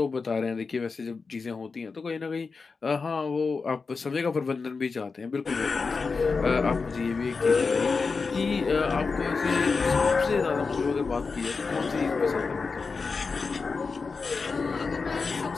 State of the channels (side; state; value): right; quieter; 4.6 dB